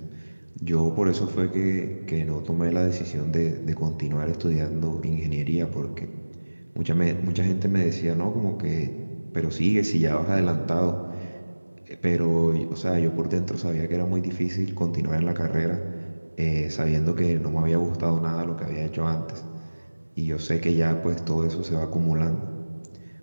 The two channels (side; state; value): both; inverted; correlation -1.00